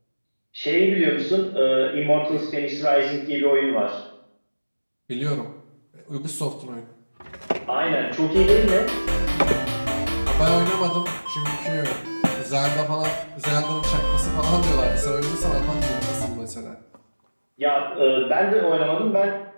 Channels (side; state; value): both; inverted; correlation -1.00